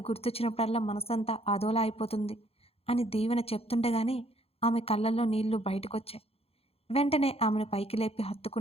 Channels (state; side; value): late; right; 0.29 ms